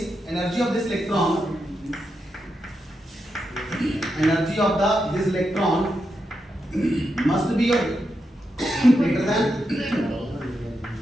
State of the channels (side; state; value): both; normal; correlation 0.85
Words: energy of this electron must be greater than